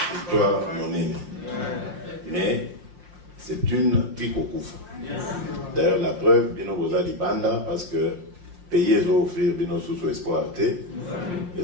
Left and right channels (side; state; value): left; late; 5.7 ms